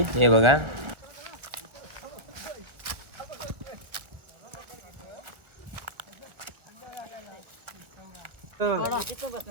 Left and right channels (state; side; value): late; left; 1.5 ms